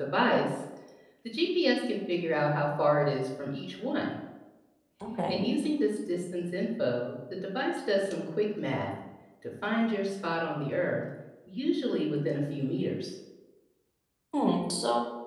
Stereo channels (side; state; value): both; identical; correlation 1.00